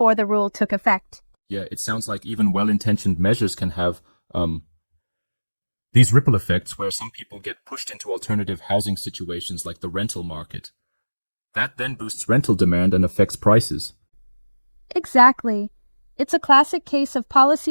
the rule took effect. Yeah, it sounds like even well-intentioned measures can have these ripple effects where some people get pushed into alternative housing situations like the rental market. That then boosts rental demand and affects prices. Exactly. It's a classic case of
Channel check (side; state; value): both; inverted; correlation -1.00